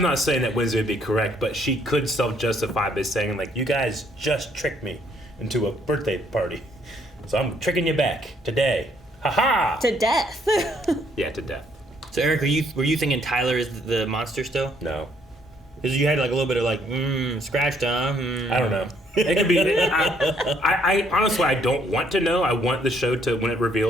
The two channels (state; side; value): normal; both; correlation 0.67